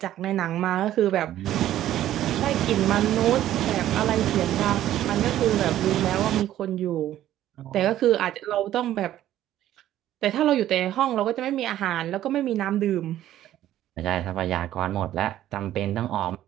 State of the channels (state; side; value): quieter; left; 12.8 dB